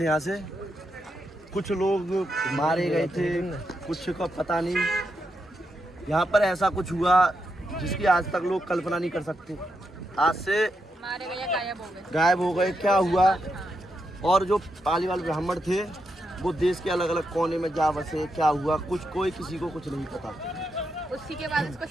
यहाँ से कुछ लोग मारे गए थे, कुछ का पता नहीं। यहाँ पर ऐसा कुछ हुआ जिसकी आज तक लोग कल्पना नहीं कर सकते। आज से मारे गए, गायब हो गए, क्या हुआ। और जो पालीवाल ब्राह्मण थे वो देश के अलग अलग कोने में जा बसे, क्या हुआ कुछ कोई किसी को कुछ नहीं पता। उसी के बाद इसको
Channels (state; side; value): normal; both; correlation 0.83